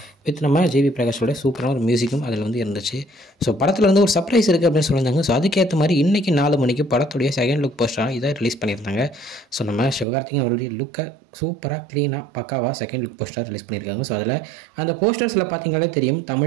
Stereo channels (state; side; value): drops out; left; at 10.1 s